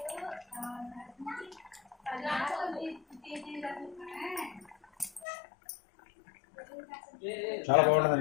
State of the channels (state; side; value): drops out; right; at 5.2 s